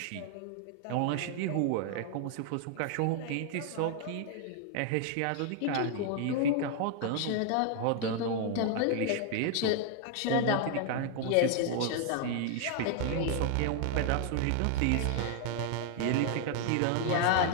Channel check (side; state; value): both; different; correlation 0.00